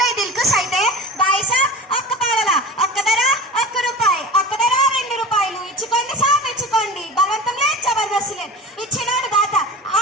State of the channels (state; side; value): normal; both; correlation 0.34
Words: అయి దిల్కుష్ అయితే బాయ్ సాబ్ ఒక్క పావల ఒక్క ధర ₹1 ఒక్క ధర ₹2 ఇచ్చుకోండి సాబ్ ఇచ్చుకోండి బలవంతం లేదు జబర్దస్త్ లేదు ఇచ్చినాడు దాత